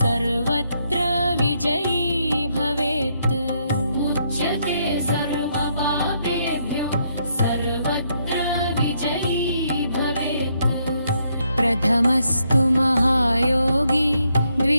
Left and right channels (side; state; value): both; inverted; correlation -0.75